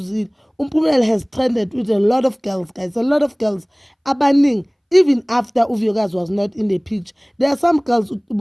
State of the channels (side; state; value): both; identical; correlation 1.00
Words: uMpumelelo has trended with a lot of girls, guys, a lot of girls abaningi. Even after uVuyokazi was not in the picture, there are some girls